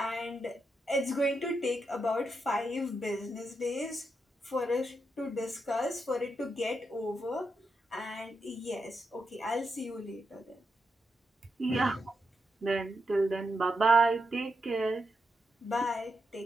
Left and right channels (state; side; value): normal; both; correlation 0.83